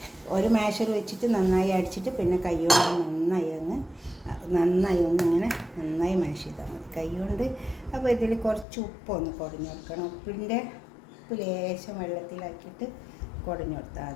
ഒരു മാഷർ വെച്ചിട്ട് നന്നായി അടിച്ചിട്ട് പിന്നെ കൈ കൊണ്ട് നന്നായി ഒന്നിങ്ങനെ നന്നായി മാഷ് ചെയ്താൽ മതി കൈ കൊണ്ട്. അപ്പോൾ ഇതിൽ കുറച്ച് ഉപ്പൊന്ന് കുടഞ്ഞു കൊടുക്കണം. ഉപ്പ് ലേശം വെള്ളത്തിലാക്കിയിട്ട് കുടഞ്ഞു കൊടുത്താൽ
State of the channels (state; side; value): drops out; right; at 8.7 s